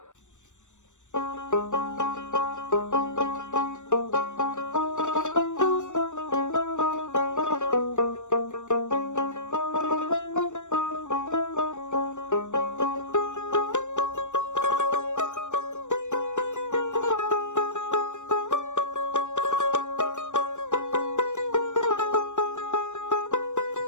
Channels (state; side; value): late; right; 0.84 ms